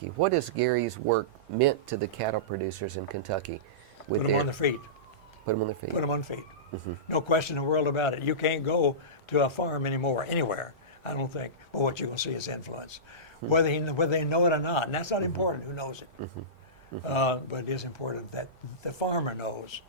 what has Gary's work meant to the cattle producers in Kentucky? With Put them on their feet. Put them on their feet. Put them on feet. No question in the world about it. You can't go to a farm anymore, anywhere, I don't think. But what you're going to see is influence. Whether they know it or not, and that's not important who knows it. But it is important that the farmer knows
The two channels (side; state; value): both; normal; correlation -0.20